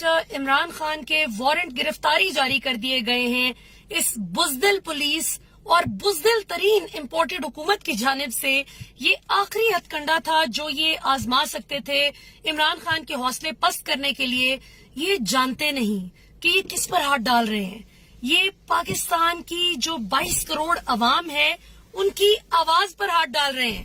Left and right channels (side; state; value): both; identical; correlation 1.00